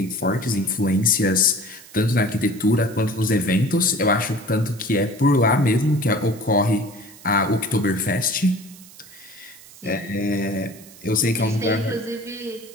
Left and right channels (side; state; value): right; noise; hiss, 21 dB below the sound